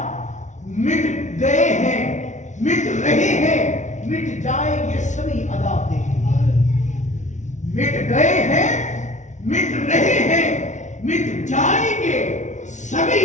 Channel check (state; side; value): late; right; 0.35 ms